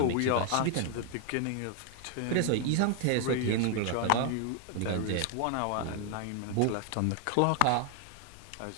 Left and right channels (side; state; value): both; different; correlation 0.00